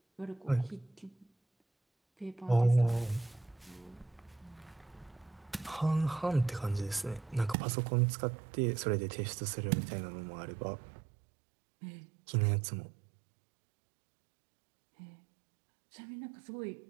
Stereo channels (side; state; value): left; drops out; at 7.6 s